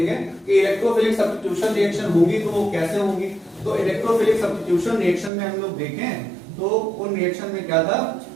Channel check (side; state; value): left; drops out; at 5.3 s